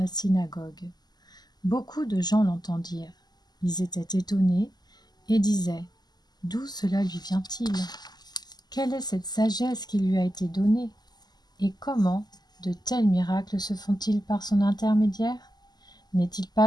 synagogue. Beaucoup de gens l'entendirent. Ils étaient étonnés et disaient : « D'où cela lui vient-il ? Quelle est cette sagesse qui lui a été donnée ? Et comment de tels miracles se font-ils par son intermédiaire ? N'est-il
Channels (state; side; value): late; right; 0.20 ms